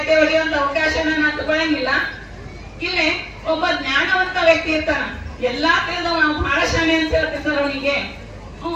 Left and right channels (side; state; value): both; identical; correlation 1.00